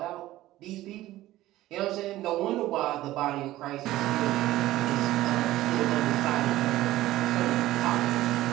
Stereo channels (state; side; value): quieter; left; 15.8 dB